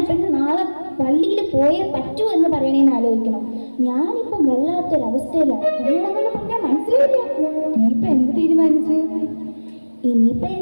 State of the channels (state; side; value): inverted; both; correlation -1.00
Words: നാളെ പള്ളിയിൽ പോയേ പറ്റൂ എന്ന് പറയണേന്ന് ആലോചിക്കണം. ഞാനിപ്പം വല്ലാത്തൊരവസ്ഥയിലാണ്. എന്നോടങ്ങനെ പറഞ്ഞാൽ മനസ്സിലായില്ല. ഇനിയിപ്പൊ എന്ത് തീരുമാനിച്ചു? ഇനിയിപ്പൊ